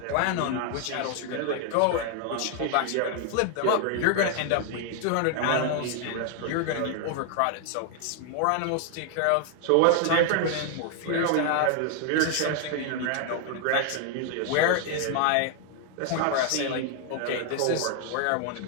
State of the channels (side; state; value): both; different; correlation 0.00